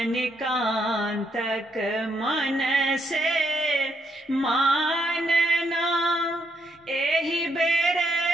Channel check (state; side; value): normal; both; correlation 0.76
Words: मन से मानना, एहि बेर